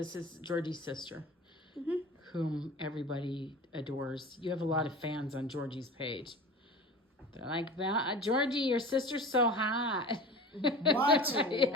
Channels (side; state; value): both; normal; correlation 0.36